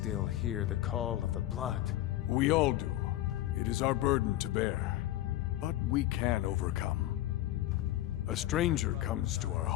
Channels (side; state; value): right; quieter; 14.6 dB